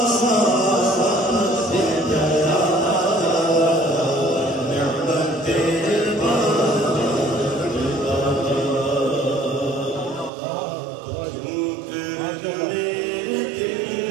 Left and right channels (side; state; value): left; drops out; at 10.3 s